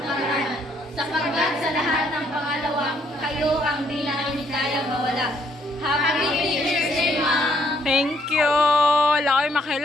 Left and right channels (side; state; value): both; normal; correlation 0.69